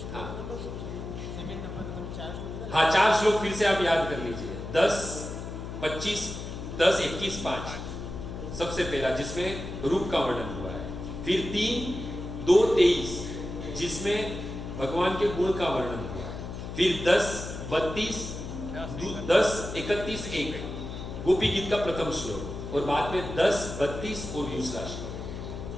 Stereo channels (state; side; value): noise; left; hum, 8 dB below the sound